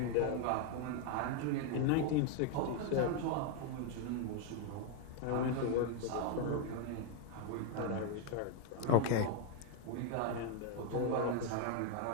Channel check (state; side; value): different; both; correlation 0.00